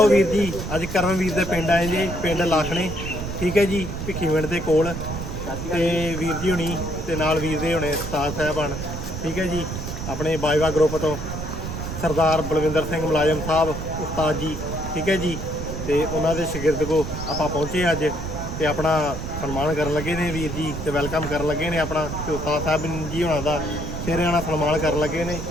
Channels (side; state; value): right; noise; rumble, 6 dB below the sound